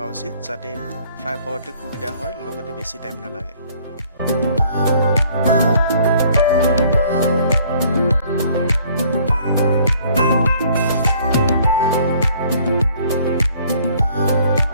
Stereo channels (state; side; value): inverted; both; correlation -0.59